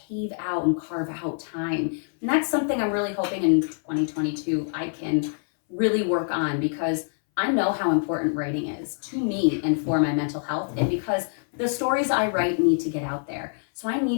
out and carve out time. And that's something I'm really hoping in 2022 I can really work on, because I know how important writing is to me and for my mental health, and because the stories I write need to get out there. So I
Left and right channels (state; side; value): silent; right; 61 dB below the other